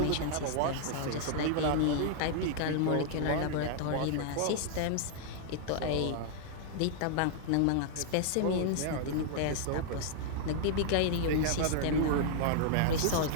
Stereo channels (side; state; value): both; different; correlation -0.01